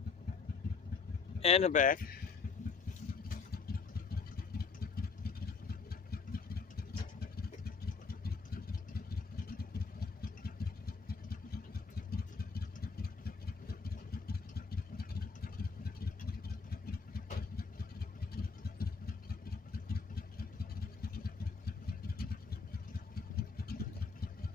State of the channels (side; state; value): right; quieter; 4.9 dB